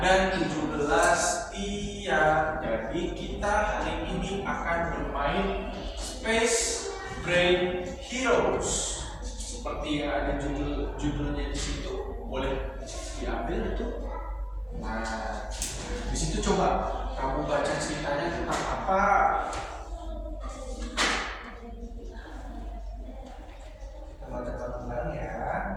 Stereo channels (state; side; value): identical; both; correlation 1.00